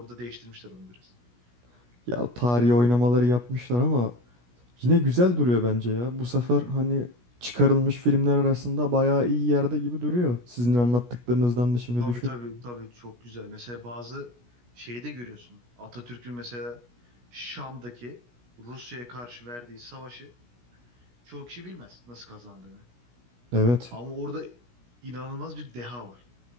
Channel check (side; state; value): left; late; 17 ms